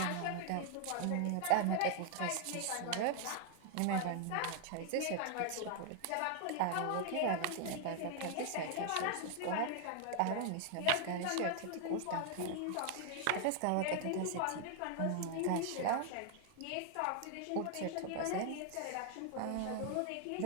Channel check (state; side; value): different; both; correlation 0.00